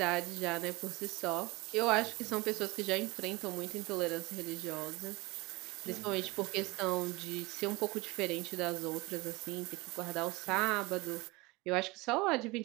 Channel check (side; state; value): left; quieter; 23.1 dB